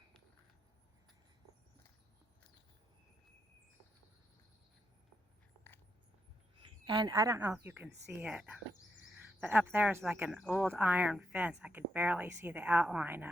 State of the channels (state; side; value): normal; both; correlation 0.82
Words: And I don't know if you can see it, But up there is like an old iron fence. I could barely see the outline